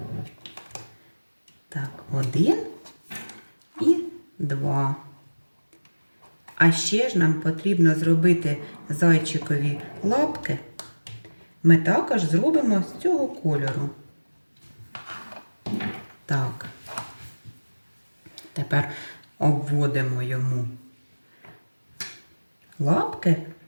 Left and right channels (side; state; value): both; inverted; correlation -1.00